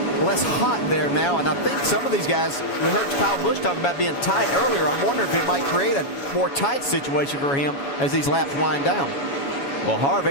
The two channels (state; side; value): late; right; 7.2 ms